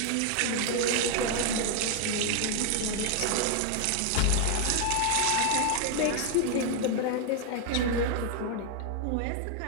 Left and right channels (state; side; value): different; both; correlation 0.00